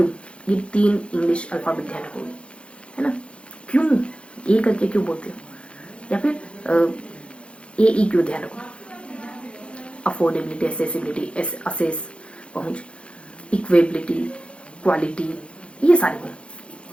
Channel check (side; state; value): right; late; 0.058 ms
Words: ये 3 इंग्लिश अल्फाबेट ध्यान रखोगे, है ना। क्यों ए करके क्यों बोलते हो, या फिर ए ई क्यों ध्यान रखो। अफोर्डेबिलिटी, एसेसिबिलिटी, असेस पहुंच, इक्वेबिलिटी, क्वालिटी, ये सारे गुण,